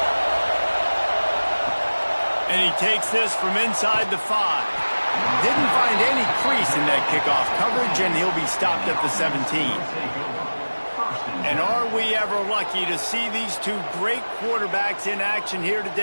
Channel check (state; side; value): inverted; both; correlation -1.00